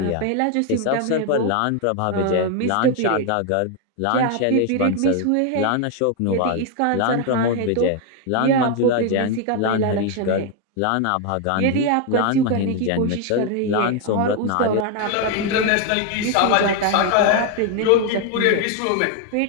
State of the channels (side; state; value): both; different; correlation 0.01